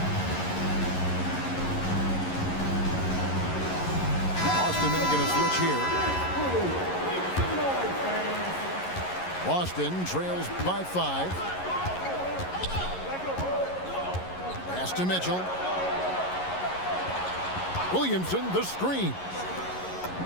Boston making a switch here. Boston trails by 5. Pass to Mitchell. Williamson, the screen.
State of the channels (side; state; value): right; late; 11 ms